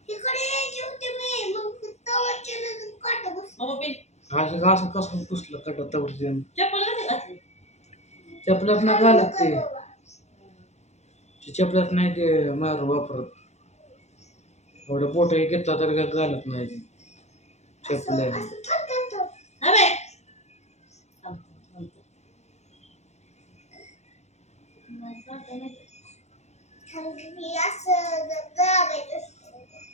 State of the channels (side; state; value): right; late; 0.32 ms